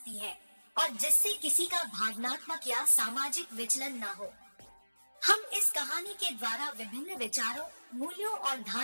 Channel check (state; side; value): inverted; both; correlation -1.00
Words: है और जिससे किसी का भावनात्मक या सामाजिक विचलन न हो। हम इस कहानी के द्वारा विभिन्न विचारों, मूल्यों और